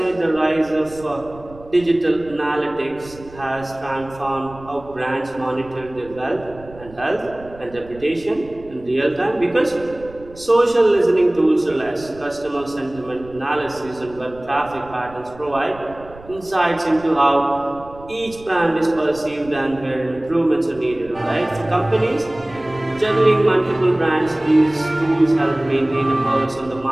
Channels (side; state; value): right; noise; rumble, 20 dB below the sound